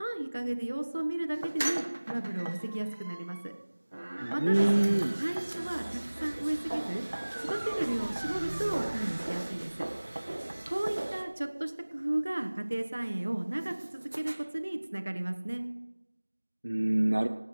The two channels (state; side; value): inverted; both; correlation -1.00